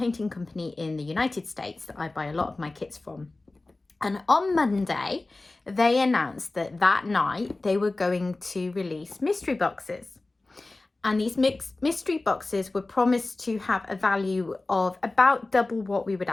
company in the United States that I buy a lot of my kits from. And on Monday, they announced that that night they were going to release mystery boxes. And these mystery boxes were promised to have a value of about double what we would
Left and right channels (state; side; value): quieter; right; 3.1 dB